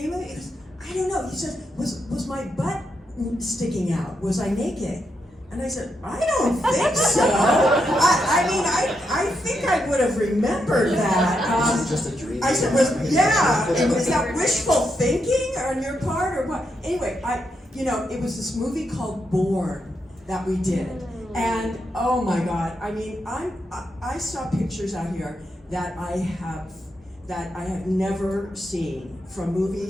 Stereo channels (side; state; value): both; normal; correlation 0.82